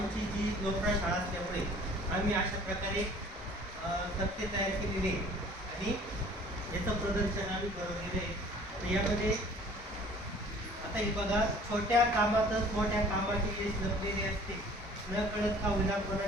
जी लोकप्राय शाळा असल्यामुळे आम्ही अशा प्रकारे तक्ते तयार केलेले आणि याचं प्रदर्शन आम्ही घडवलेलं आहे. तर यामध्ये आता हे बघा, छोट्या कामातच मोठ्या कामाचे यश लपलेले असते, न कळत का होईना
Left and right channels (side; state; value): both; normal; correlation 0.51